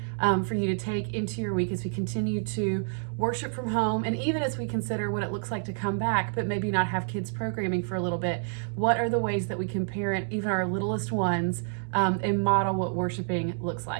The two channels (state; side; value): silent; left; 59 dB below the other